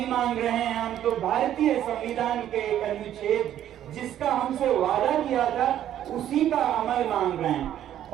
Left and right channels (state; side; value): quieter; left; 11.3 dB